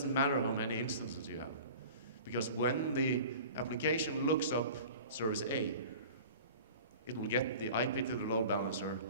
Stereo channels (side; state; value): both; inverted; correlation -0.41